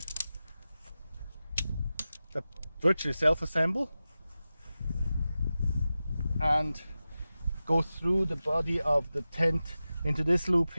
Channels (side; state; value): both; inverted; correlation -0.94